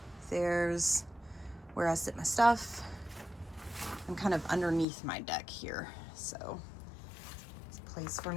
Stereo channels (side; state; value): right; drops out; at 4.9 s